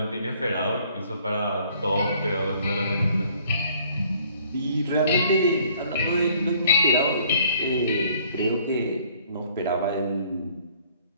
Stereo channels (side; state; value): both; inverted; correlation -0.59